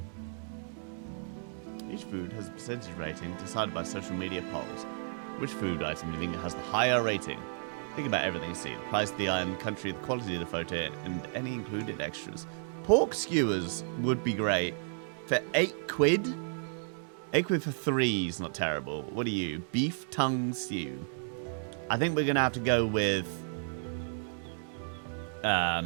Each food has a percentage rating decided by social media polls. Which food item do you think has the higher rating? Think about everything you see. The price of the item, country, the quality of the photo, and any included extras. Pork skewers would be great. For 8 quid? 8 quid for 3 is not terrible. What are you? Beef tongue stew. I think we're going to have to go with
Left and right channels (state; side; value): silent; left; digital silence